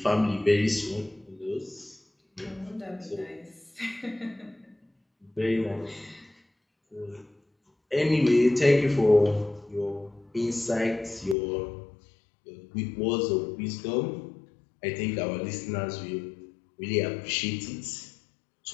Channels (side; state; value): right; drops out; at 11.4 s